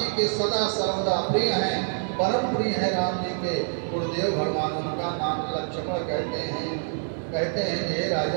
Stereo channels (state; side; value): silent; left; digital silence